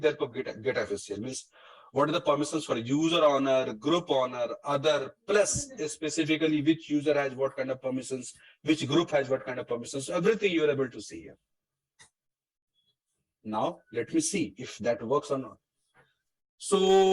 for get FACL means. What are the permissions for user owner, group owner, other, plus specifically which user has what kind of permissions, which group has what kind of permissions. So everything you're able to see here. Now, let me see if that works or not.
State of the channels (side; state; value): both; identical; correlation 1.00